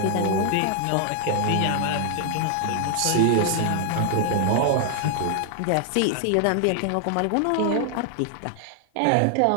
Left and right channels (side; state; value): both; different; correlation 0.00